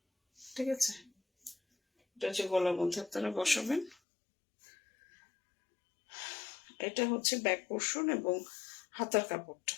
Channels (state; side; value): drops out; right; at 4.0 s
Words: ঠিক আছে? এটা হচ্ছে গলার মধ্যে আপনারা বসাবেন। এটা হচ্ছে ব্যাক পোর্শন এবং হাতার কাপড়টা,